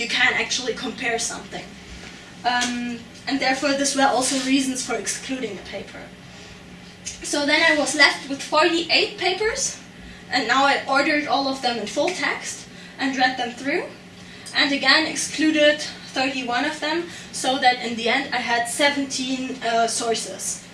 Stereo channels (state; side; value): identical; both; correlation 1.00